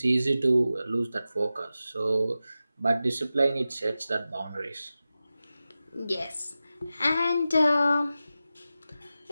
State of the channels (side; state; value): both; inverted; correlation -0.94